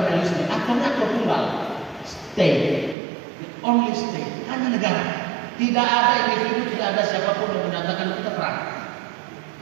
realisme. Aktornya aktor tunggal, state, the only state, hanya negara. Tidak ada individu, tidak ada siapapun yang menyatakan kita perang.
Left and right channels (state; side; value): drops out; left; at 3.0 s